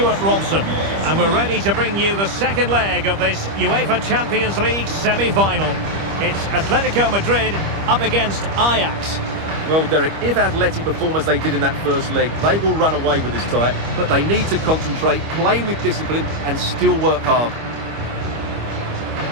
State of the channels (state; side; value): late; left; 25 ms